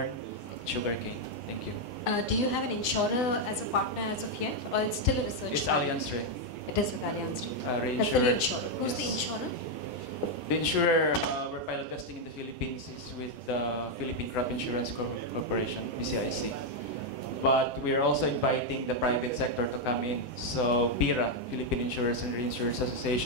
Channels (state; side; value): normal; both; correlation 0.01